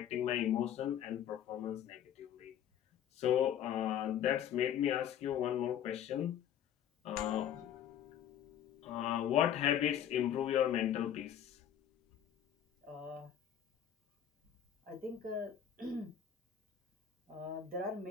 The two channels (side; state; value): right; quieter; 9.8 dB